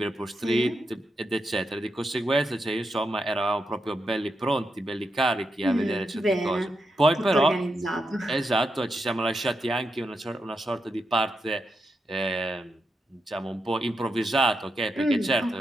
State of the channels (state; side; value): normal; both; correlation 0.85